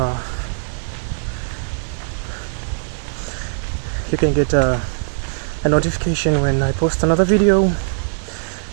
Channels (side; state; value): left; silent; digital silence